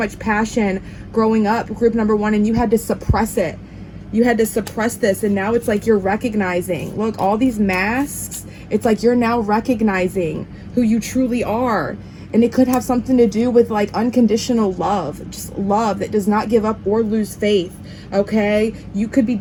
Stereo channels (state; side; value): identical; both; correlation 1.00